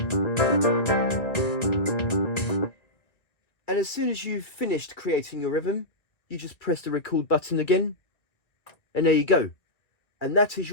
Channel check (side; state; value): right; late; 1.6 ms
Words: And as soon as you've finished creating your rhythm, you just press the record button again, and there you go. And that is